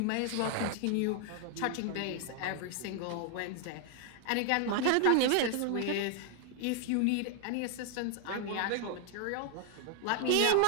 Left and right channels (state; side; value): different; both; correlation 0.00